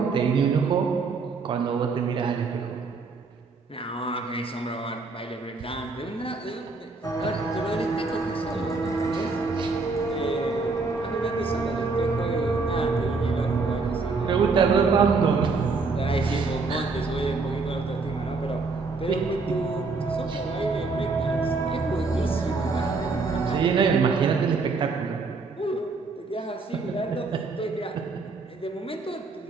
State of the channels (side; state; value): left; quieter; 4.1 dB